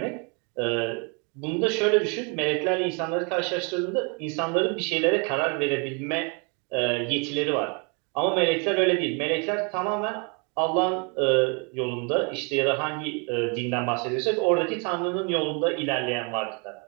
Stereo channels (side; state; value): left; quieter; 34.5 dB